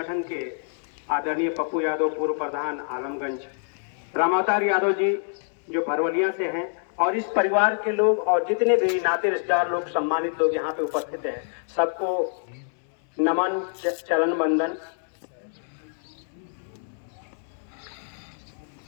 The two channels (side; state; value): right; silent; 61 dB below the other